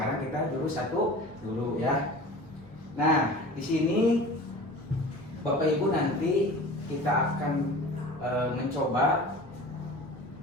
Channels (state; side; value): normal; both; correlation 0.39